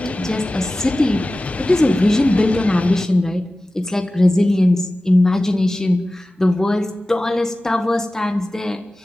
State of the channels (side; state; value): both; normal; correlation 0.96